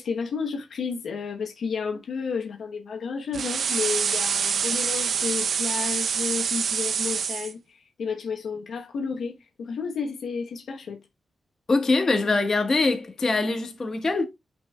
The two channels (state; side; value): normal; both; correlation 0.81